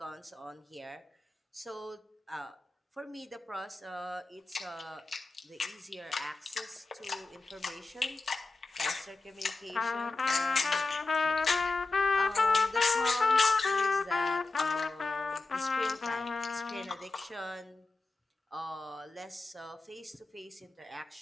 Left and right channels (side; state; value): right; quieter; 3.5 dB